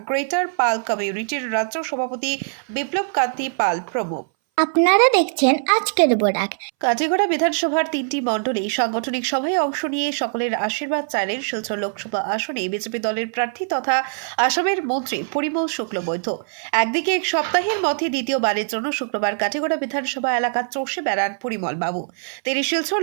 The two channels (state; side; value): silent; left; 62 dB below the other